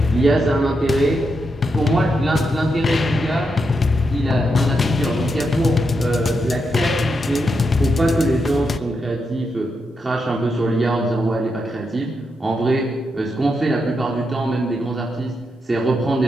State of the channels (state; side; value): normal; both; correlation 0.84